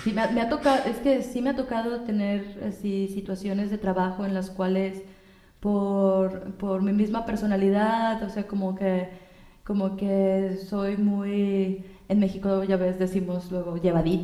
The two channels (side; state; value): both; identical; correlation 1.00